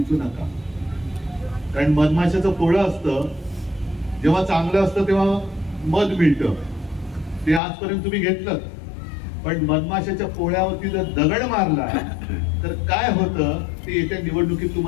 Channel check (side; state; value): right; drops out; at 7.6 s